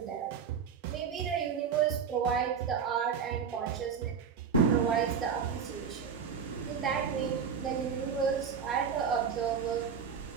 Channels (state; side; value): quieter; left; 6.8 dB